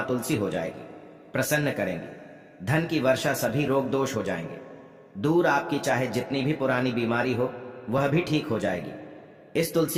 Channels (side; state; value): both; identical; correlation 1.00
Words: तुलसी हो जाएगी, प्रसन्न करेंगी। धन की वर्षा, सभी रोग दोष हो जाएंगे दूर। आपकी चाहे जितनी भी पुरानी बीमारी हो वह भी ठीक हो जाएगी इस